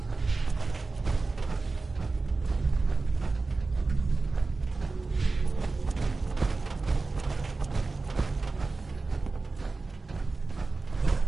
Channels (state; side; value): quieter; left; 3.7 dB